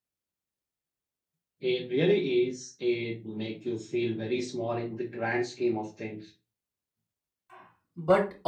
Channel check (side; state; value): both; identical; correlation 1.00